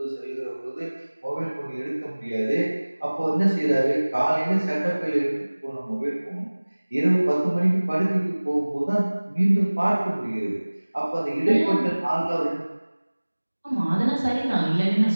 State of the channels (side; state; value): both; inverted; correlation -1.00